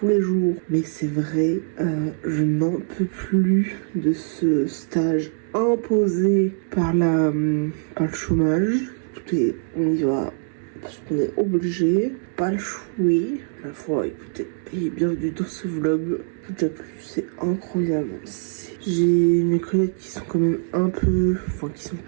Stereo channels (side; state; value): left; silent; digital silence